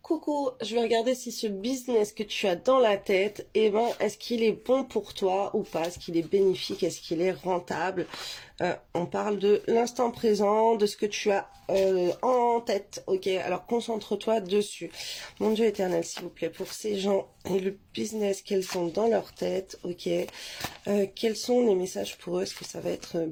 Coucou, je vais regarder si ce business que tu as dans la tête, est-ce qu'il est bon pour toi ou pas? Est-ce qu'il est bénéfique? Est-ce qu'il est rentable? On parle de l'instant présent, de ce que tu as en tête, ok? Alors concentre-toi dessus. Mon Dieu éternel, s'il vous plaît, pour ces gens et le business qu'elles ont dans leur tête, ok? Quels sont les messages pour eux? Est-ce que ça va être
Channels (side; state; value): both; identical; correlation 1.00